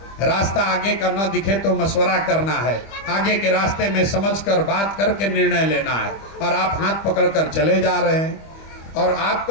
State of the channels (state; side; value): late; right; 25 ms